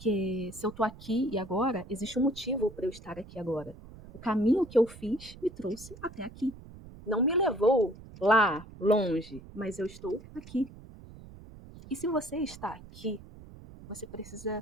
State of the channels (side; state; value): right; noise; rumble, 17 dB below the sound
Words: se eu tô aqui e agora, existe um motivo para eu estar aqui agora. O caminho que eu fiz me trouxe até aqui. Não me levou lá, longe, mas eu estou aqui. E se você está aqui, você